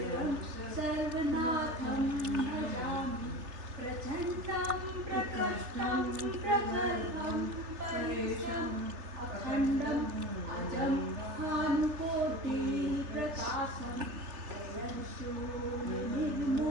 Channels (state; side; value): late; left; 3.3 ms